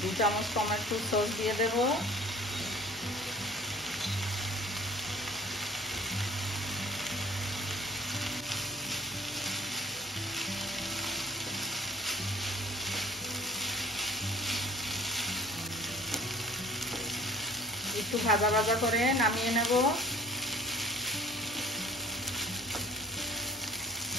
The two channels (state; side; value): normal; both; correlation 0.51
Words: 2 চামচ টমেটো সস দিয়ে দেব। একটু ভাজা ভাজা করে নামিয়ে নেব।